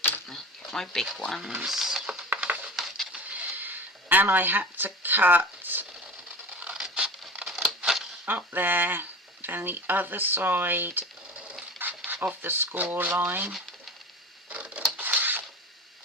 my big ones. And I had to cut up there, then the other side of the score line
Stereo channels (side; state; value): both; normal; correlation 0.33